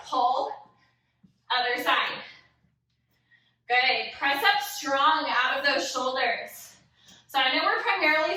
Pull. Other side. Good. Press up strong out of those shoulders. So I know we're primarily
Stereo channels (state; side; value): identical; both; correlation 1.00